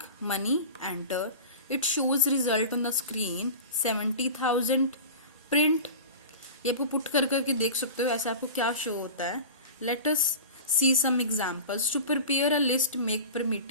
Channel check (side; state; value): both; inverted; correlation -0.33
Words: money enter, it shows result on the screen 70,000 print. ये आपको पुट कर करके देख सकते हो ऐसे आपको क्या शो होता है। Let us see some examples. To prepare a list, make